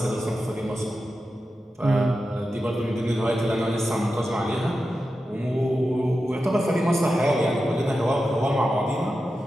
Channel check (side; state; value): both; normal; correlation 0.91